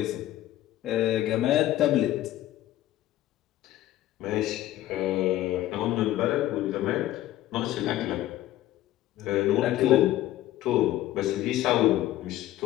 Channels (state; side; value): quieter; right; 14.3 dB